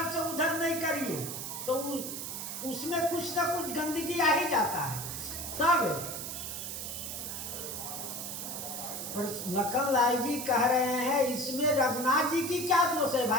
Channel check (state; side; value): noise; right; hiss, 6 dB below the sound